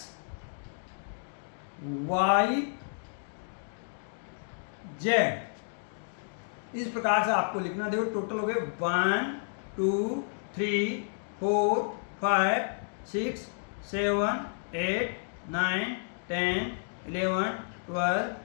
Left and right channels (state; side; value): silent; right; digital silence